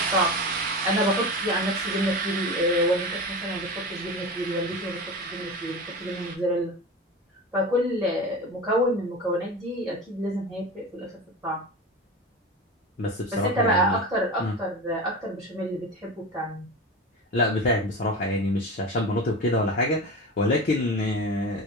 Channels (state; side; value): normal; both; correlation 0.28